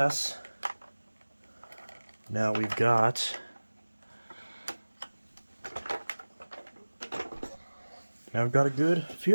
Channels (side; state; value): both; inverted; correlation -1.00